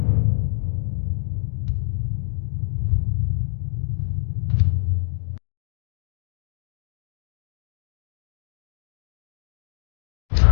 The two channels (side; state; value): right; silent; digital silence